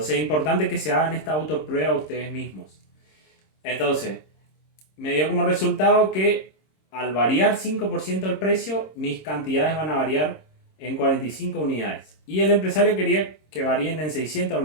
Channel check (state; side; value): late; right; 26 ms